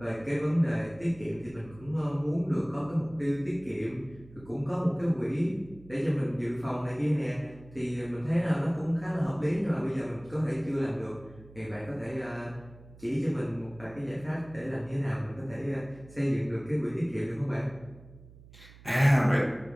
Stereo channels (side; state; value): right; noise; hum, 21 dB below the sound